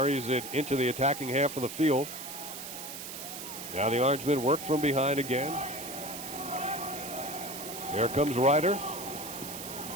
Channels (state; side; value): noise; right; hiss, 9 dB below the sound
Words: it into the attacking half of the field. Now the Orangemen work from behind again. Here comes Ryder.